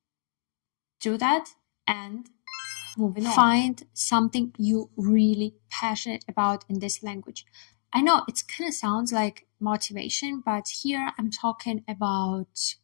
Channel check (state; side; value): silent; right; digital silence